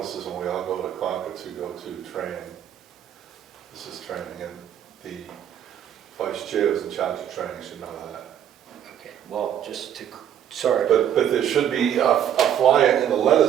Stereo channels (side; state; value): left; quieter; 9.8 dB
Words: when we all go to Concord to go to training. This is training, and the vice chair is in charge of training, should know that. Okay, well, just to, sorry. But there should be a flyer in the